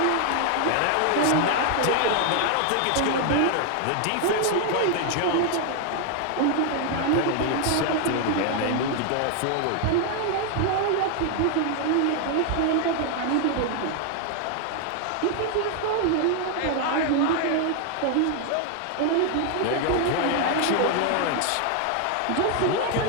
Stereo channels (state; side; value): different; both; correlation 0.00